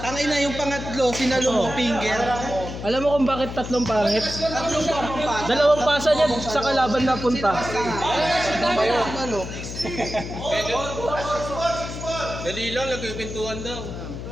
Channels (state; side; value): noise; left; hum, 8 dB below the sound